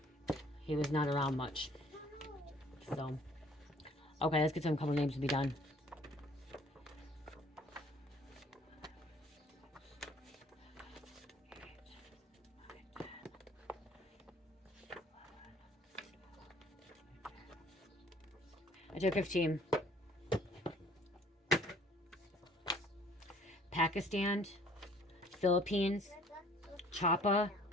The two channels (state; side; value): normal; both; correlation 0.56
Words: He was not around much. So, okay, let's get some couple names to be done. I took 15. Pakistan, Philippines, Chapa,